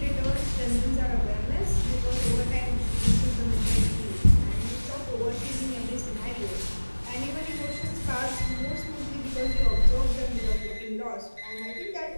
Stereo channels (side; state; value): both; inverted; correlation -1.00